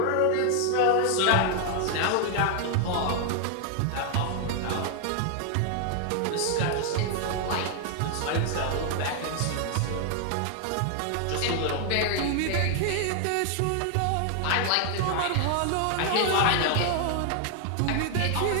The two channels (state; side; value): different; both; correlation 0.00